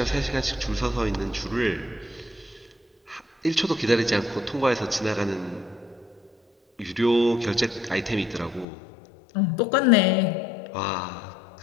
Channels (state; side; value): drops out; right; at 8.7 s